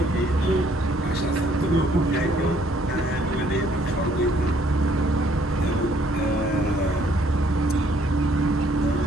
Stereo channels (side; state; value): both; normal; correlation 0.64